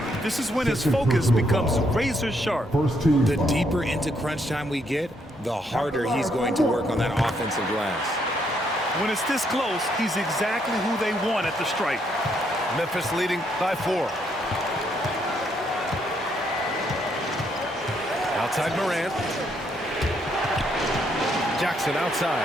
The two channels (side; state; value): both; normal; correlation 0.73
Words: This is when his focus becomes razor sharp. First team The foul. deeper into crunch time we get, the harder he's going to work on that offensive glass. When it's this close, he's exactly who they want at the stripe. Memphis leading by 4. Outside Morant. Jackson